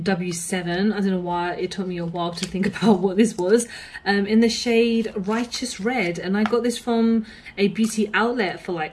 I don't know why it took me a while to think about what this was. In the shade Righteous Red, and I got this from a beauty outlet for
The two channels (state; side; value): identical; both; correlation 1.00